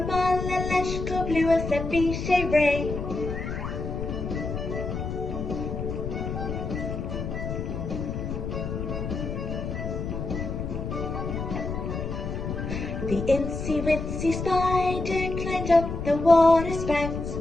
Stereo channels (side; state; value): left; noise; rumble, 4 dB below the sound